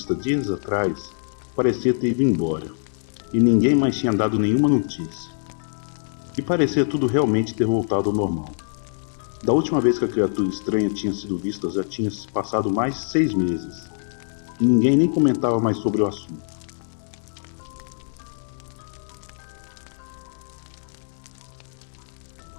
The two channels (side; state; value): right; silent; digital silence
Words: dias atrás parecia ter ido embora, e ninguém mais tinha dado nenhuma notícia. E parecia tudo realmente ter voltado ao normal. Da última vez que a criatura estranha tinha sido vista já tinha se passado mais de 6 meses, e ninguém nem comentava mais sobre o assunto.